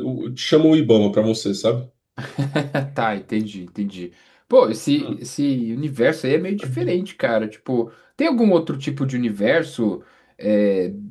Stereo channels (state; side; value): identical; both; correlation 1.00